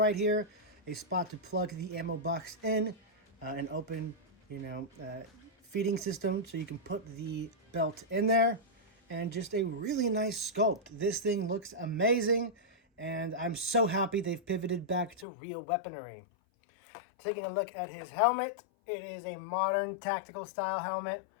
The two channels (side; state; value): right; drops out; at 15.2 s